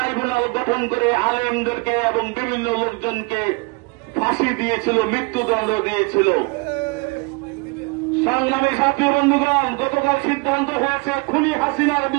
গঠন করে আলেমদেরকে এবং বিভিন্ন লোকজনকে ফাঁসি দিয়েছিল, মৃত্যুদণ্ড দিয়েছিল। সংগ্রামী সাথী বন্ধুগণ, গতকাল সিদ্ধান্ত হয়েছে খুনি হাসিনার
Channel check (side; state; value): left; quieter; 28.1 dB